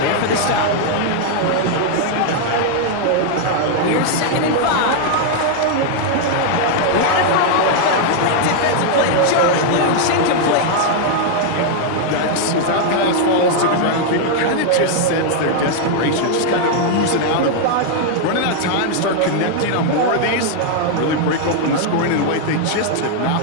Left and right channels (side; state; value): both; different; correlation 0.00